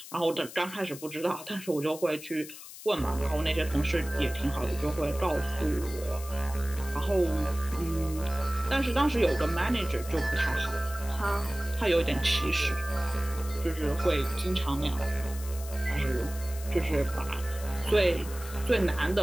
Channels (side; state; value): left; noise; hiss, 14 dB below the sound